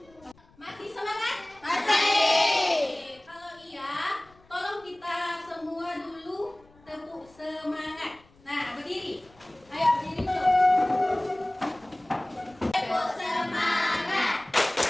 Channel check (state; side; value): noise; left; rumble, 29 dB below the sound